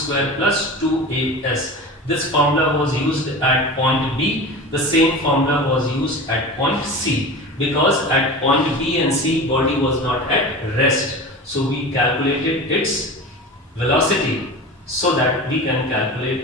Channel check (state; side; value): normal; both; correlation 0.31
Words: plus 2as. This formula was used at point B. The same formula was used at point C, because at point B and C body was not at rest. So we calculated its velocity so that we can